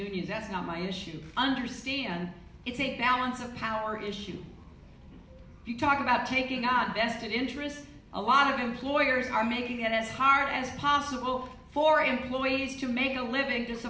That's not my issue. Understand it's a balance of power issue. If you talk about taking on vested interests, a lot of employers are making it as hard as possible for employees to make a living to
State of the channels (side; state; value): both; identical; correlation 1.00